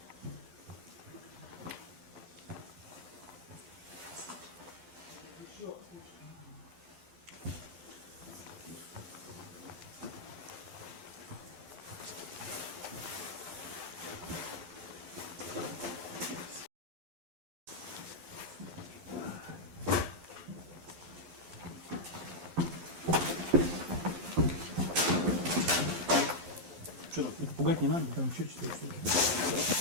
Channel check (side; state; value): left; late; 12 ms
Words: Что там? Это пугать не надо, там еще 4 штуки.